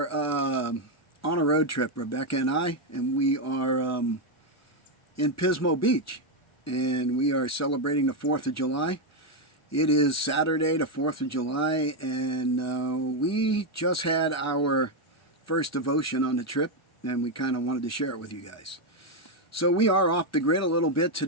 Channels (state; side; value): normal; both; correlation 0.04